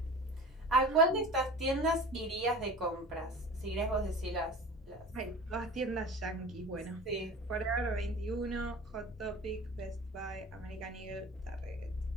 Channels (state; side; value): normal; both; correlation 0.37